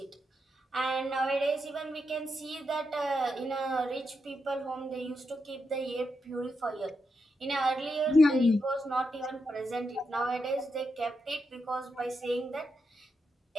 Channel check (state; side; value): normal; both; correlation 0.84